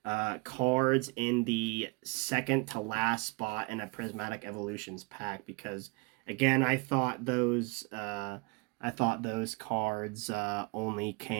cards in the second to last spot in a Prismatic Evolutions pack, because again, I thought those cards only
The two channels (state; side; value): quieter; left; 30.1 dB